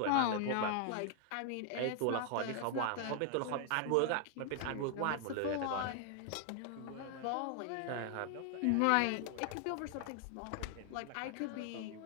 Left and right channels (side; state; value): both; different; correlation 0.00